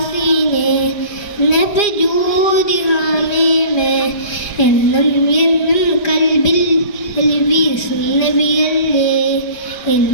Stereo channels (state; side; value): late; right; 4.9 ms